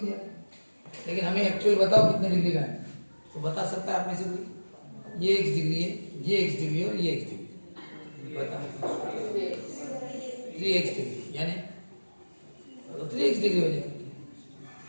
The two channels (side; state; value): both; inverted; correlation -1.00